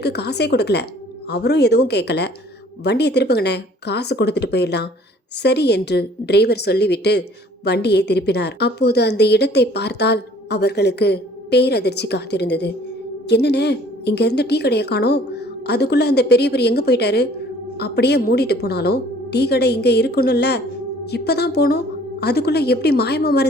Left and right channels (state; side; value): normal; both; correlation 0.54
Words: காசே கொடுக்கல, அவரும் எதுவும் கேட்கல. வண்டியை திருப்புங்கண்ணே, காசு கொடுத்துட்டு போயிடலாம். சரி என்று டிரைவர் சொல்லிவிட்டு வண்டியை திருப்பினார். அப்போது அந்த இடத்தை பார்த்தால் அவர்களுக்கு பேரதிர்ச்சி காத்திருந்தது. என்னண்ணே, இங்க இருந்த டீ கடையை காணோம். அதுக்குள்ள அந்த பெரியவர் எங்க போயிட்டாரு? அப்படியே மூடிட்டு போனாலும் டீ கடை இங்க இருக்கணும்ல. இப்பதான் போனோம், அதுக்குள்ள எப்படி மாயமா